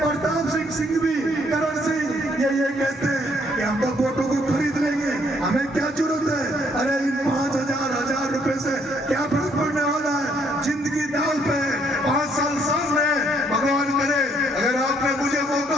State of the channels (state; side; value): normal; both; correlation 0.68